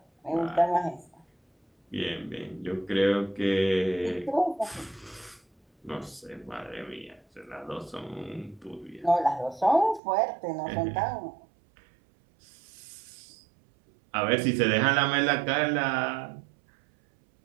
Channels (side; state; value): left; drops out; at 10.0 s